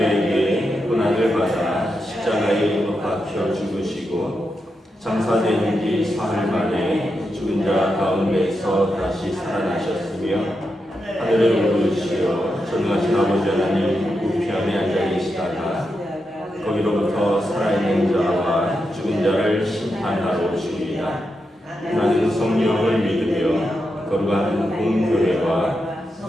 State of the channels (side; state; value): both; normal; correlation 0.86